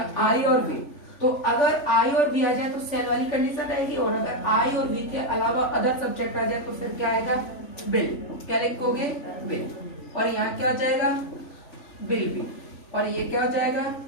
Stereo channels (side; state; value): right; late; 3.5 ms